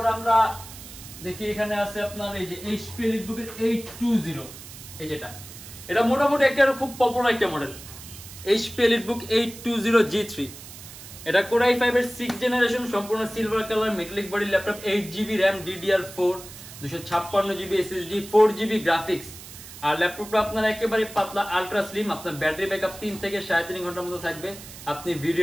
আমরা দেখি এখানে আছে আপনার এই যে HP EliteBook এর 820, এই যেটা, এটা মোটামুটি একটা খুব পপুলার একটা মডেল, HP EliteBook 820 G3। এটা Core i5 এর 6th জেনারেশন, সম্পূর্ণ silver colour metallic body laptop, 8GB RAM DDR4, 256GB SSD, 4GB graphics. আর ল্যাপটপটা আপনার একেবারে পাতলা, আলট্রা স্লিম। আপনার ব্যাটারি ব্যাকআপ 3 থেকে 3.5 ঘন্টার মতো থাকবে। আপনি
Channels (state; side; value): noise; right; hiss, 15 dB below the sound